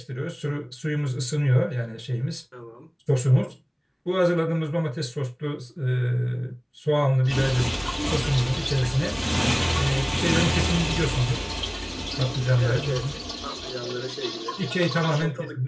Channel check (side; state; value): both; identical; correlation 1.00